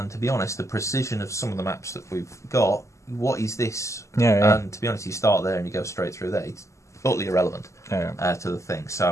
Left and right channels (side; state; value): right; late; 0.14 ms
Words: to be honest, the precision of some of the maps that we've got, what is this? And to be honest, you start there and you go straight through there. It's totally irrelevant to the thing.